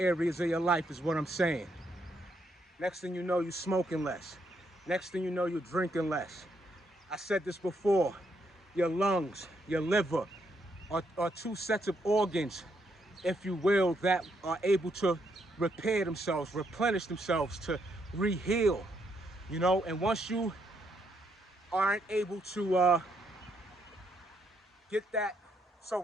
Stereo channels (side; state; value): both; normal; correlation 0.76